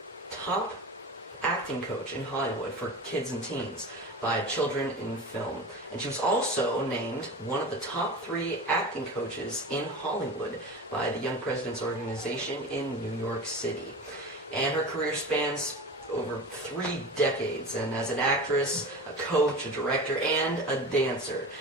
top acting coach in Hollywood for kids and teens by Children in Film. And she was also named one of the top 3 acting coaches in Hollywood by the Young Presidents Organization in New York City. And her career spans over 3 decades, and as an actress, a coach, a director, and a dancer.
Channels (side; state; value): both; normal; correlation 0.31